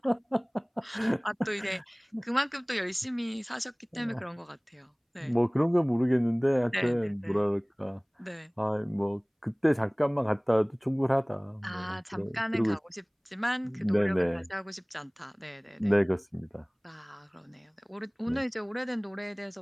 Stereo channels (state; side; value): identical; both; correlation 1.00